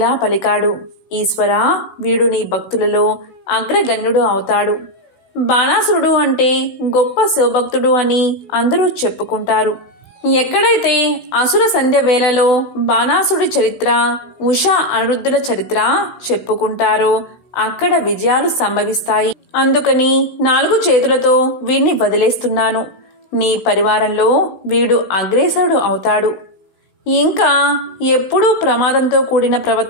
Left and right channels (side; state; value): right; late; 16 ms